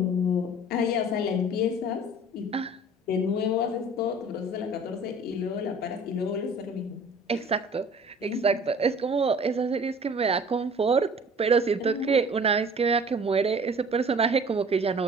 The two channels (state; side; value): normal; both; correlation 0.47